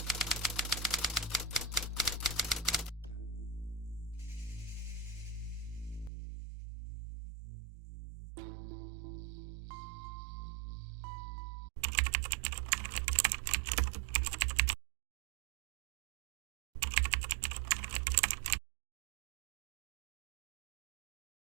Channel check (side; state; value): left; drops out; at 6.1 s